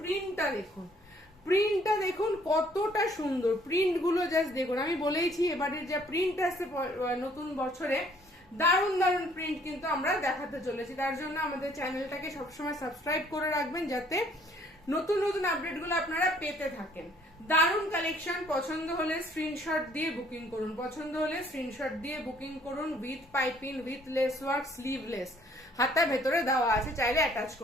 প্রিন্টটা দেখুন কতটা সুন্দর, প্রিন্ট গুলো জাস্ট দেখুন। আমি বলেইছি এবারের যা প্রিন্ট আসছে নতুন বছরে, দারুণ দারুণ প্রিন্ট কিন্তু আমরা দেখাতে চলেছি। তার জন্য আমাদের চ্যানেলটাকে সবসময় সাবস্ক্রাইব করে রাখবেন, যাতে নতুন নতুন আপডেট গুলো আপনারা পেতে থাকেন। দারুণ কালেকশন। পছন্দ হলে স্ক্রিনশট দিয়ে বুকিং করুন। With piping with lace work, sleeveless, হাতা ভেতরে দেওয়া আছে, চাইলে অ্যাটাচ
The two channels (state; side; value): normal; both; correlation 0.61